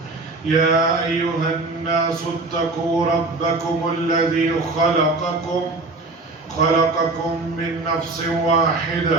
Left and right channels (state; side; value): quieter; left; 3.4 dB